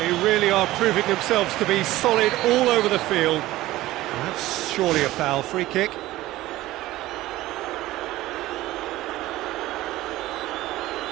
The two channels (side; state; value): left; quieter; 16.6 dB